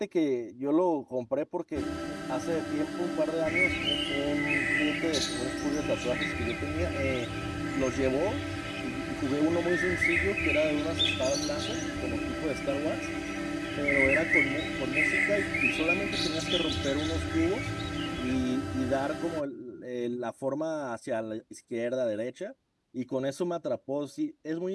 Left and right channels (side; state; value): both; identical; correlation 1.00